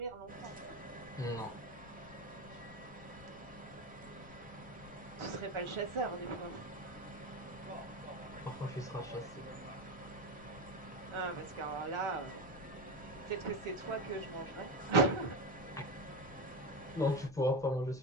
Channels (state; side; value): noise; left; rumble, 18 dB below the sound